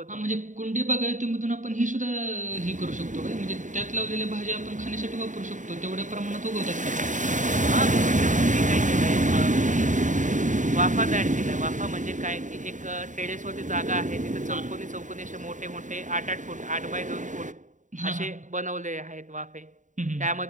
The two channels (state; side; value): late; left; 0.36 ms